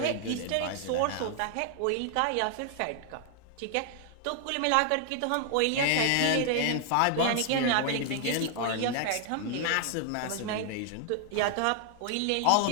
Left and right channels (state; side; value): different; both; correlation 0.00